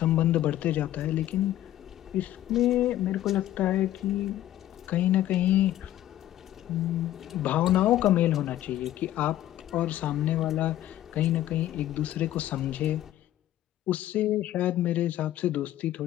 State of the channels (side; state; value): right; quieter; 13.4 dB